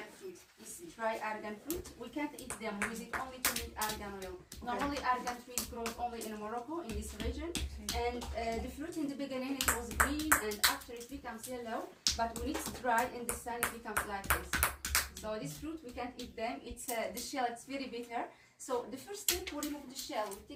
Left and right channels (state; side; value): identical; both; correlation 1.00